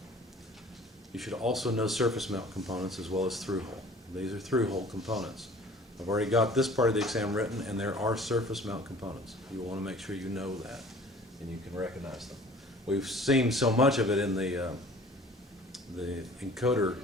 You should also know surface mount components as well as through-hole. These are through-hole components. I've already got this part of the exam written, and there are surface mount components. You want to make sure you know that and you can recognize them. We've seen so much of it in the encoder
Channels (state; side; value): normal; both; correlation 0.48